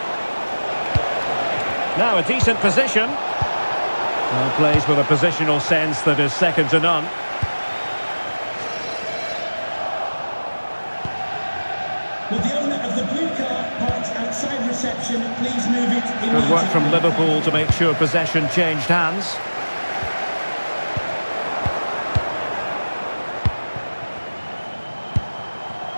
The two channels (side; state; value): both; inverted; correlation -1.00